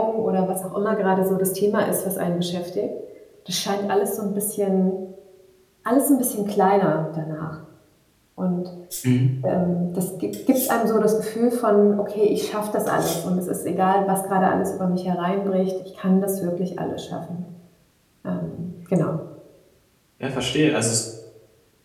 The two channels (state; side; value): identical; both; correlation 1.00